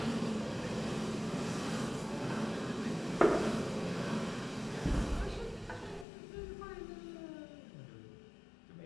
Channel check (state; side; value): drops out; right; at 6.1 s